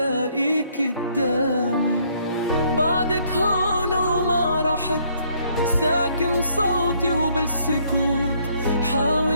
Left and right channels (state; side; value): inverted; both; correlation -0.67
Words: قدامي. بعدك هون وما رحت، ساكن صوتي وبالسكوت